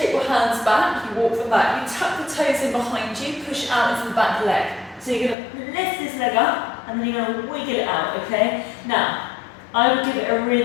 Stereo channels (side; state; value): right; drops out; at 5.4 s